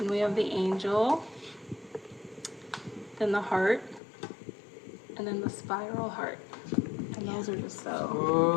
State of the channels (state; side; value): drops out; right; at 4.0 s